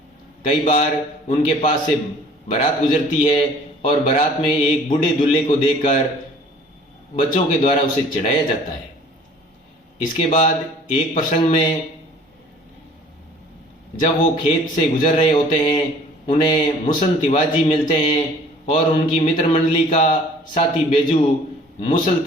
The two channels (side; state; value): both; normal; correlation 0.51